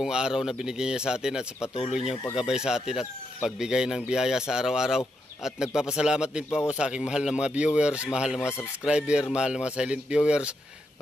araw na binigay niya sa atin at sa patuloy niyang paggabay sa atin at pagbigay ng biyaya sa araw-araw. At nagpapasalamat din po ako sa aking mahal na mga viewers, mahal na mga subscriber, mahal na mga silent viewers.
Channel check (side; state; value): both; normal; correlation 0.82